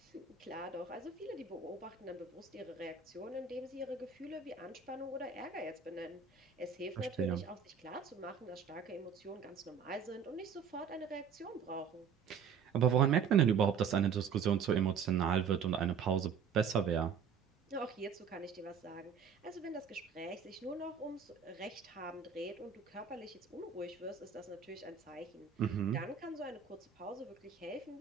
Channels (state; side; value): quieter; left; 6.7 dB